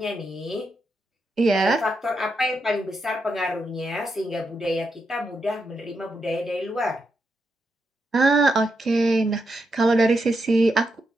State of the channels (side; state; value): both; normal; correlation 0.84